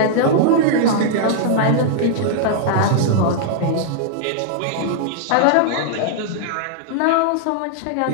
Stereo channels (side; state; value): both; different; correlation -0.01